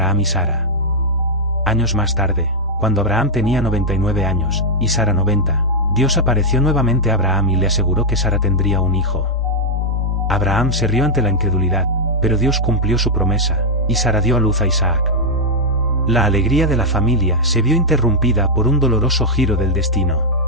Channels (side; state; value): both; normal; correlation -0.02